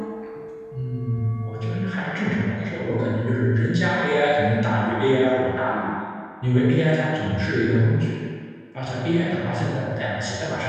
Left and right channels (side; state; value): both; identical; correlation 1.00